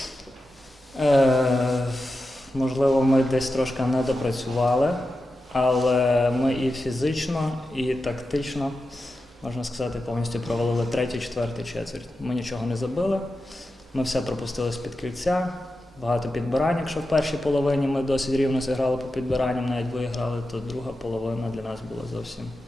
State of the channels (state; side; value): normal; both; correlation 0.91